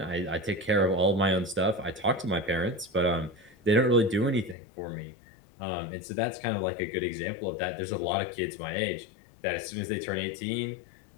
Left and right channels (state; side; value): drops out; right; at 4.5 s